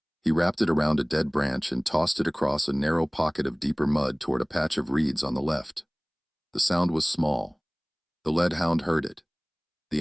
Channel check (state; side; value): identical; both; correlation 1.00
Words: He wrapped it around a dead branch and tossed it across a narrow pocket of deeper mud toward a patch of reeds on the left. The sound was small, The lead hound heard it. The